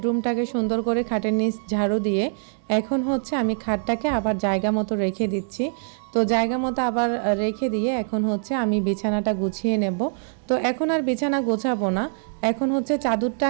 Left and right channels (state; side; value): silent; left; digital silence